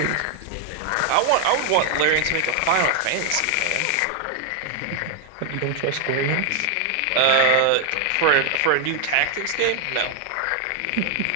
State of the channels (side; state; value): both; different; correlation 0.00